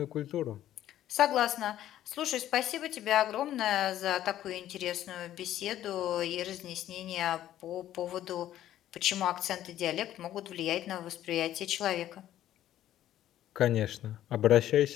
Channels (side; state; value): right; quieter; 12.5 dB